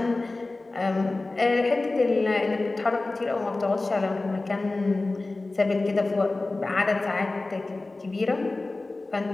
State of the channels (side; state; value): right; quieter; 3.2 dB